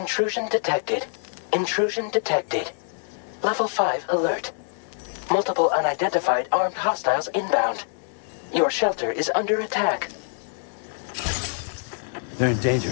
Intrusion detected. Intrusion detected. Level 5 alert. Multiple unidentified armed hostiles inbound. Your shelter is under attack. They're in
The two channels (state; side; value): silent; right; digital silence